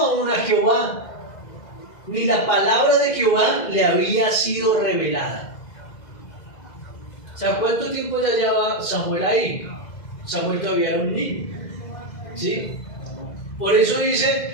a Jehová, ni la palabra de Jehová le había sido revelada. O sea, ¿cuánto tiempo ya lleva Samuel ahí? Samuel todavía era un niño, ¿sí? Por eso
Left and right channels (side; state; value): right; late; 2.0 ms